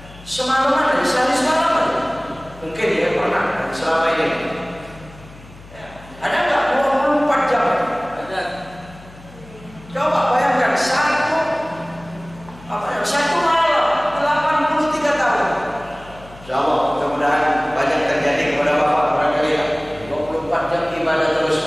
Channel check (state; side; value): noise; left; hum, 20 dB below the sound